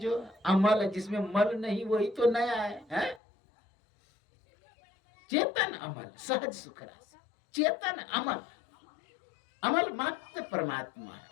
अमल है, जिसमें मल नहीं, वही तो नया है? चेतन अमल सहज सुख राशि। चेतन अमल, अमल मात्र परमात्मा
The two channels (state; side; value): drops out; right; at 3.2 s